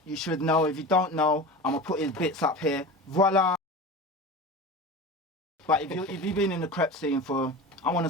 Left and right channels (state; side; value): normal; both; correlation 0.31